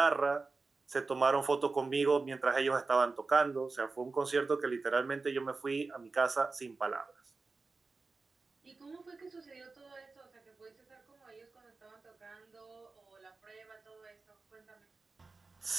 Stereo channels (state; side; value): quieter; left; 3.9 dB